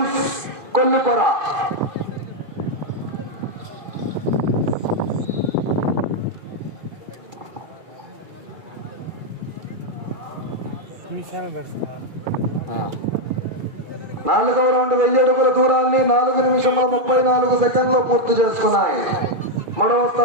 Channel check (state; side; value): late; left; 2.4 ms